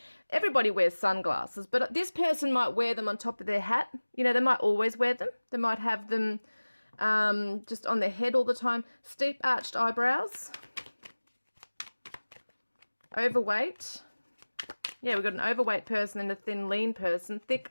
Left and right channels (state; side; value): inverted; both; correlation -1.00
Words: everybody wears sunglasses, but this person might wear them on top of their hat. You know, they might always wear them. They might have them just on their head all the time. Steep arched eyebrows. Overweight. Yeah, we've got an overweight person and a thin, lean person.